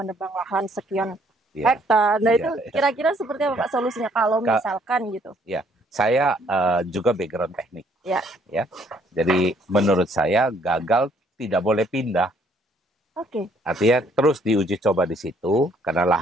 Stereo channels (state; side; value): normal; both; correlation 0.65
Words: lahan sekian hektar. Nah, itu kira-kira seperti apa Pak solusinya kalau misalkan gitu? Ya, saya juga background teknik. Ya. Jadi menurut saya gagal tidak boleh pindah. Artinya terus diuji coba di situ karena